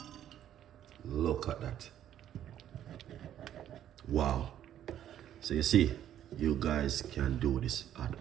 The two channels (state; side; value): quieter; left; 11.0 dB